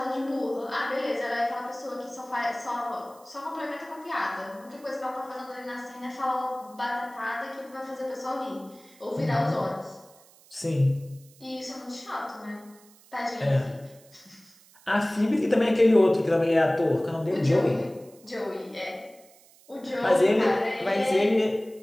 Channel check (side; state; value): right; noise; hiss, 26 dB below the sound